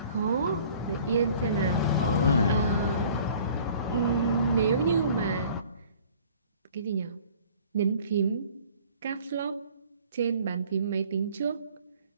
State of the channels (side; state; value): both; inverted; correlation -0.51